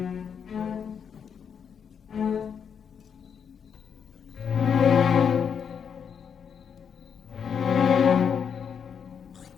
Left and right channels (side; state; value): right; quieter; 7.3 dB